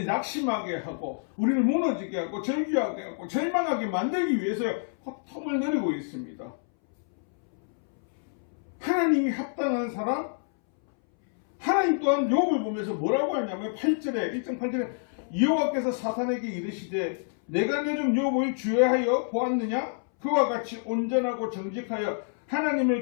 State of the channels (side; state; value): right; silent; 60 dB below the other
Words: 낙심하게 하고 우리를 무너지게 하고 절규하게 하고 절망하게 만들기 위해서 호통을 노리고 있습니다. 하나님이 합당한 사람, 하나님 또한 욥을 보면서 뭐라고 하냐면 8절에 1.8절에 여호와께서 사탄에게 이르시되 내가 요즘 욥을 주의하여 보았느냐? 그와 같이 온전하고 정직하여